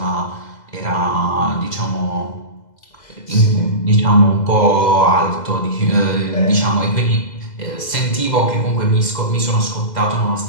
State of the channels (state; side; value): late; right; 2.0 ms